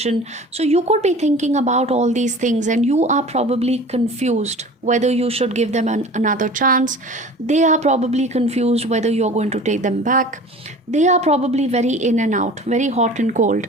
So you could be thinking about all these things, and you are probably confused whether you should give them another chance. They are probably confused whether you're going to take them back. They are probably very in and out, very hot and cold.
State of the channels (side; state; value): both; normal; correlation 0.41